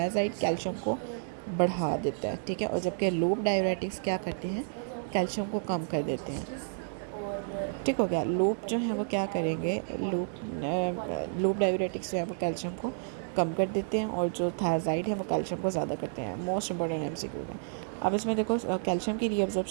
कैल्शियम को बढ़ा देता है, ठीक है, और जबकि लूप डायूरेटिक्स क्या करते हैं, कैल्शियम को कम कर देते हैं, ठीक हो गया। लूप जो है वो क्या करेंगे, लूप डायूरेटिक्स जो है वो कैल्शियम को कम कर देते हैं और जो थायराइड है वो कैल्शियम को ज़्यादा करते हैं। मोस्ट इंपॉर्टेंट एमसीक्यू है। अब इसमें देखो कैल्शियम की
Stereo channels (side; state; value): left; silent; digital silence